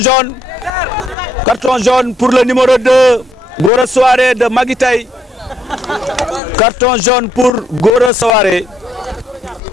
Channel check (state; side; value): normal; both; correlation 0.73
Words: jaune pour le numéro 2, Gora Souaré de Maguitaï. Carton jaune pour Gora Souaré.